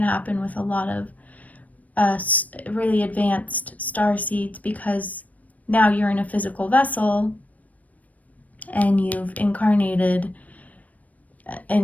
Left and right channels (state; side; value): late; right; 0.071 ms